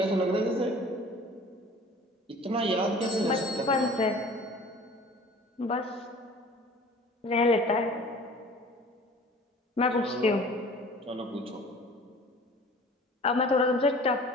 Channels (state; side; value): normal; both; correlation 0.46